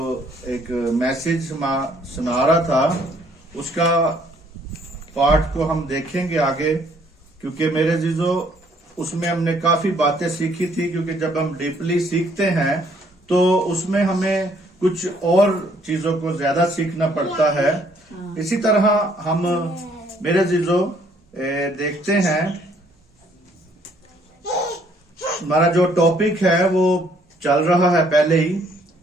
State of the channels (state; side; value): normal; both; correlation 0.65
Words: ایک میسج سنا رہا تھا اس کا پارٹ کو ہم دیکھیں گے آگے، کیونکہ میرے عزیزو اس میں ہم نے کافی باتیں سیکھی تھی. کیونکہ جب ہم ڈیپلی سیکھتے ہیں تو اس میں ہمیں کچھ اور چیزوں کو زیادہ سیکھنا پڑتا ہے. اسی طرح ہم میرے عزیزو دیکھتے ہیں ہمارا جو ٹاپک ہے وہ چل رہا ہے پہلے ہی،